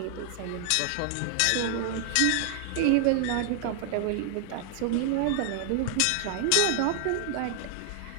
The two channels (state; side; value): different; both; correlation 0.00